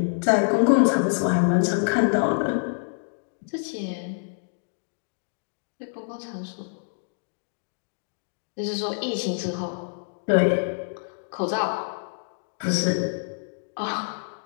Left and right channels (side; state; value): right; silent; digital silence